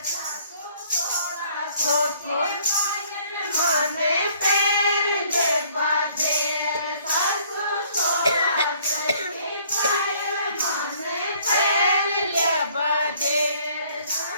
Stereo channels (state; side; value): inverted; both; correlation -0.60